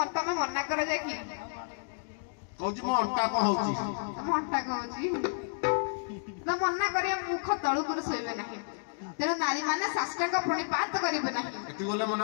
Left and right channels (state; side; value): silent; right; digital silence